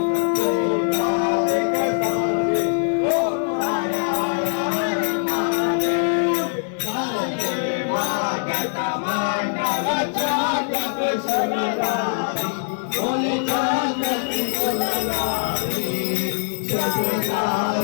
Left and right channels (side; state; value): right; silent; 60 dB below the other